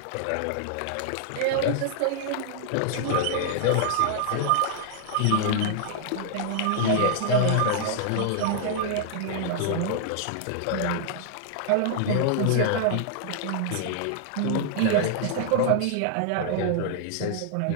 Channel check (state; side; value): different; both; correlation 0.00